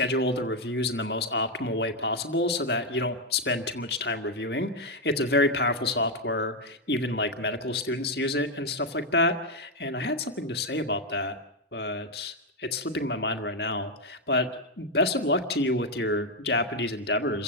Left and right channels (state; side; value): normal; both; correlation 0.04